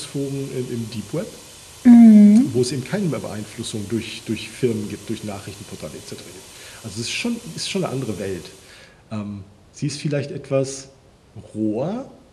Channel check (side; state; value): both; identical; correlation 1.00